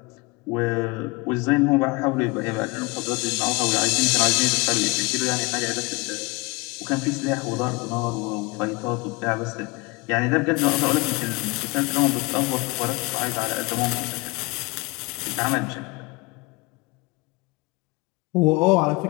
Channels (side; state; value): right; quieter; 25.9 dB